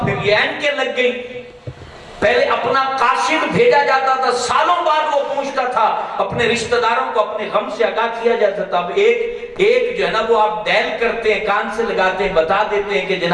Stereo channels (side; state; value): both; identical; correlation 1.00